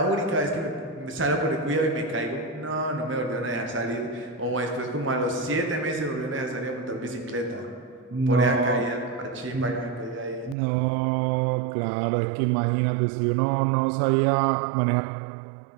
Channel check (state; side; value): drops out; left; at 10.6 s